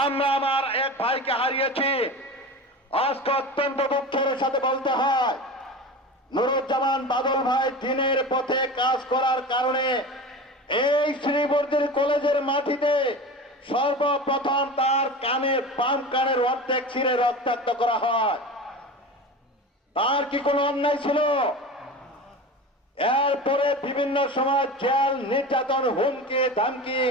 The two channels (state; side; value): normal; both; correlation 0.31